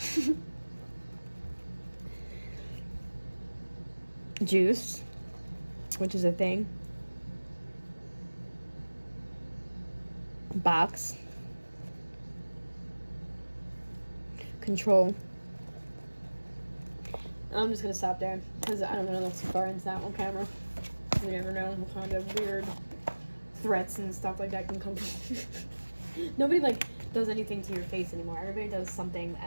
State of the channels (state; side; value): inverted; both; correlation -1.00